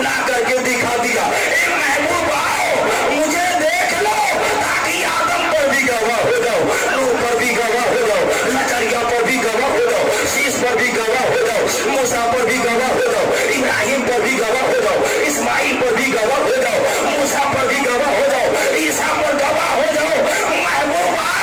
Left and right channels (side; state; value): both; identical; correlation 1.00